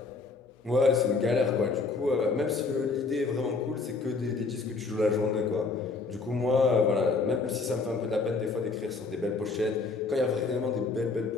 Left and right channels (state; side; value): quieter; right; 4.1 dB